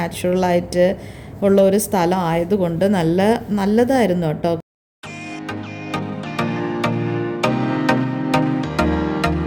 ഉള്ള ഒരു സ്ഥലം ആയതുകൊണ്ട് നല്ലതായിരുന്നു കേട്ടോ.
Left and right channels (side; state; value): both; identical; correlation 1.00